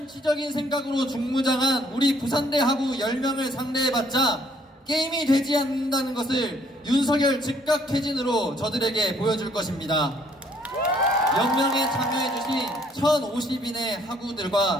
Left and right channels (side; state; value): both; normal; correlation 0.64